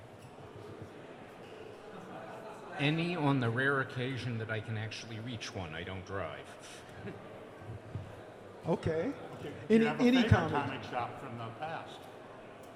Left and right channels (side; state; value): both; identical; correlation 1.00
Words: Any on the rare occasion that I can actually reach one. I don't drive. Okay. Do you have a Any favorite comic shop from the past?